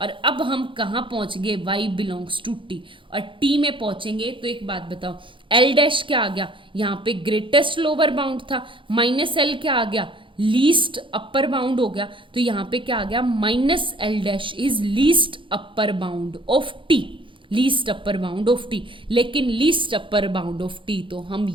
अब हम कहाँ पहुंच गए, वाई बिलोंग्स टू टी, और टी में पहुंचेंगे तो एक बात बताओ, एल डैश क्या आ गया, यहाँ पे ग्रेटेस्ट लोअर बाउंड था, माइनस एल क्या आ गया, लीस्ट अपर बाउंड हो गया। तो यहाँ पे क्या आ गया, minus L dash is least upper bound of T, least upper bound of T. लेकिन least upper bound of T तो हम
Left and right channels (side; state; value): left; late; 0.25 ms